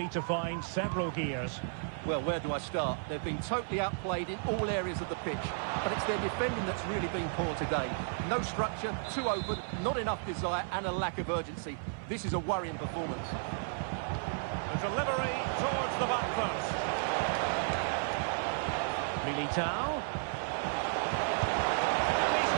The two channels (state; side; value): silent; left; 55 dB below the other